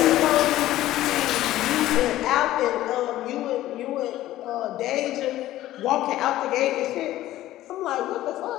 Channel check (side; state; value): right; quieter; 14.7 dB